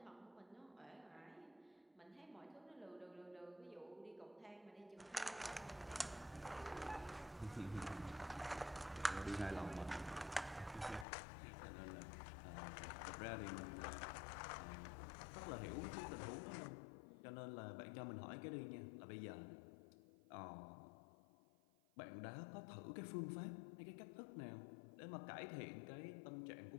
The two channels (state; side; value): drops out; right; at 11.1 s